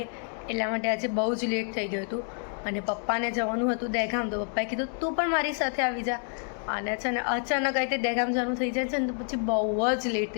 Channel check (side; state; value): right; silent; 56 dB below the other